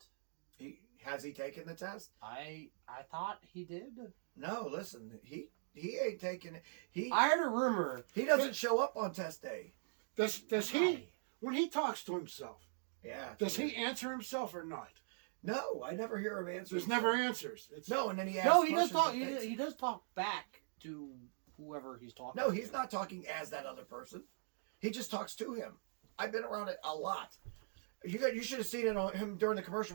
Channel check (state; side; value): silent; left; digital silence